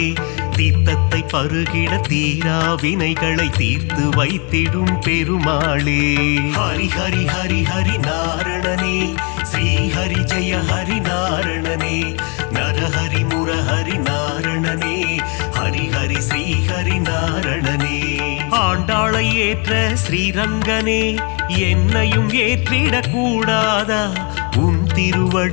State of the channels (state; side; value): quieter; right; 34.0 dB